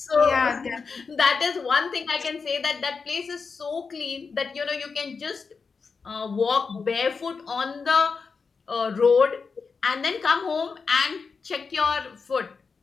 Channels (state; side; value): quieter; right; 5.0 dB